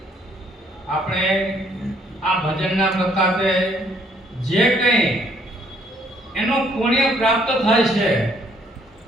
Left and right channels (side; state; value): both; normal; correlation 0.65